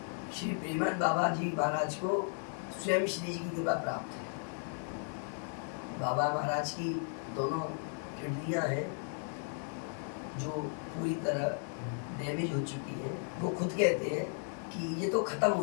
श्री प्रेमानंद बाबा जी महाराज को स्वयं श्री जी की कृपा प्राप्त है। बाबा महाराज की दोनों किडनियां हैं जो पूरी तरह डैमेज हो चुकी है। वो खुद कहते हैं कि ये तो खत्म हो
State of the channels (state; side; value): silent; right; 54 dB below the other